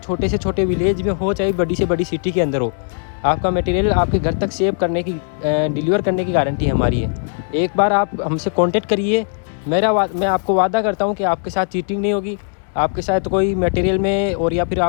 से छोटे विलेज में हो, चाहे बड़ी से बड़ी सिटी के अंदर हो, आपका मटेरियल आपके घर तक सेव करने की डिलीवर करने की गारंटी हमारी है। एक बार आप हमसे कांटेक्ट करिए, मैं आपको वादा करता हूँ कि आपके साथ चीटिंग नहीं होगी, आपके साथ कोई मटेरियल में और या फिर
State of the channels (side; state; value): right; silent; digital silence